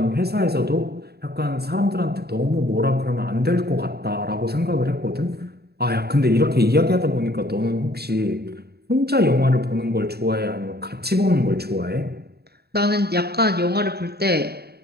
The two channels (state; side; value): late; left; 0.47 ms